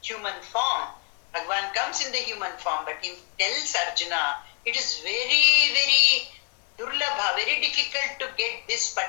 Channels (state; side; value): quieter; right; 31.4 dB